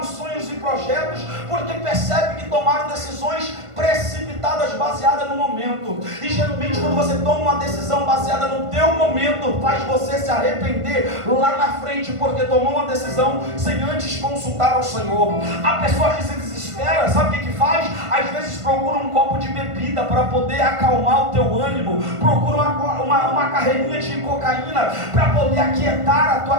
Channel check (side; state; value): left; late; 1.5 ms